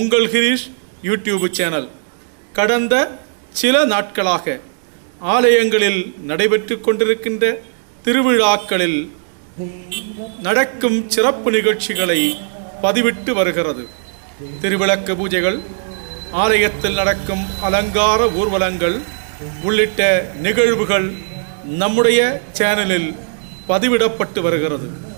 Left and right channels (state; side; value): silent; left; digital silence